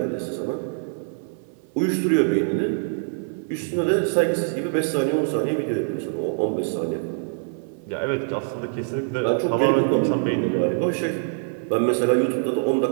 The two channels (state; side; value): silent; left; 56 dB below the other